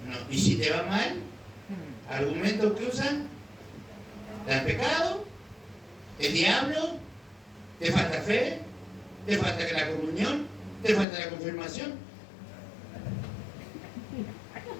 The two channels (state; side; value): drops out; right; at 11.1 s